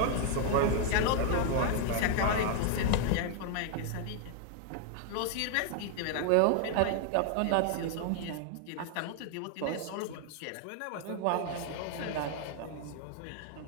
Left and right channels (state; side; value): different; both; correlation 0.00